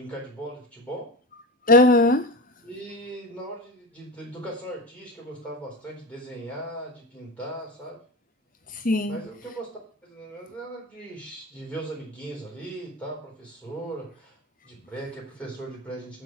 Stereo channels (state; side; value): normal; both; correlation 0.26